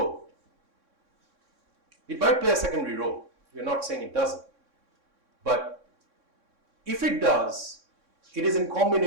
It might play a secondary role. We're not saying it doesn't. But if it does, it is in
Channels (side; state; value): left; late; 3.6 ms